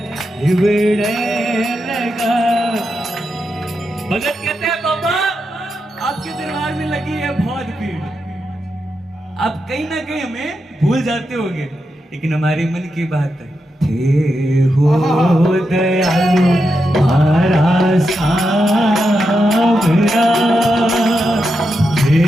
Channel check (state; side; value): normal; both; correlation 0.86